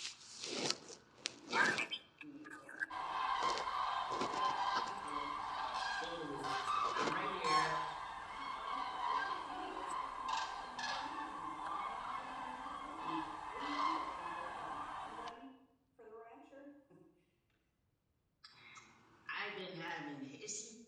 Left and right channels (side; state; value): both; identical; correlation 1.00